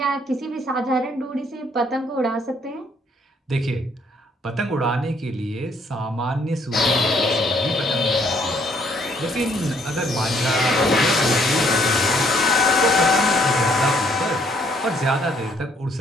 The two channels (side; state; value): both; normal; correlation 0.66